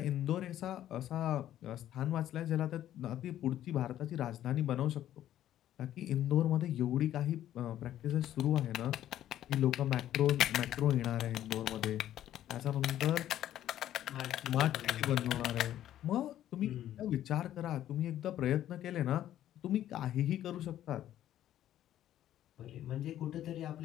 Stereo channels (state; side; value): quieter; right; 12.1 dB